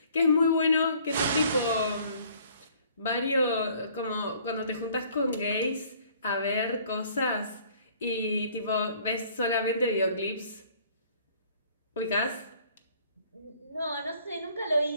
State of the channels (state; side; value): inverted; both; correlation -0.58